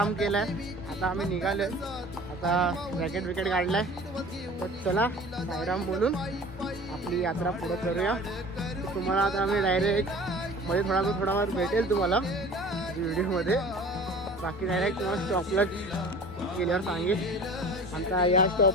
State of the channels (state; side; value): normal; both; correlation 0.42